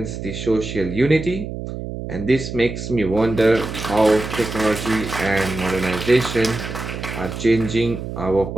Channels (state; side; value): noise; right; hum, 7 dB below the sound